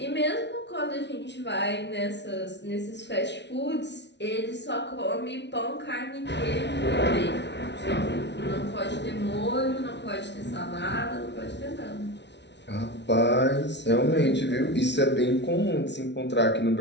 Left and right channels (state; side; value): late; right; 0.51 ms